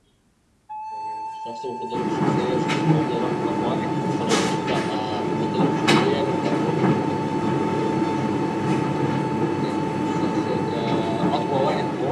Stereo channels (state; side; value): identical; both; correlation 1.00